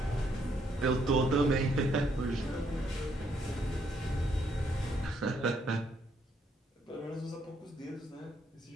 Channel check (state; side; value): normal; both; correlation 0.72